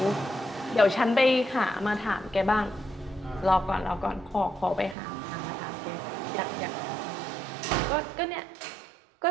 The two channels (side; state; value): left; drops out; at 5.0 s